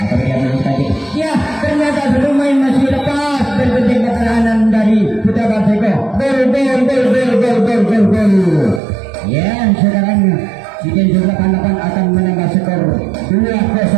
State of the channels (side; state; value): left; drops out; at 8.8 s